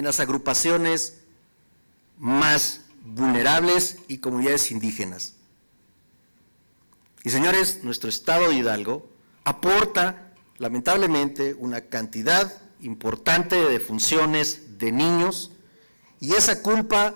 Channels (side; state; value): both; inverted; correlation -1.00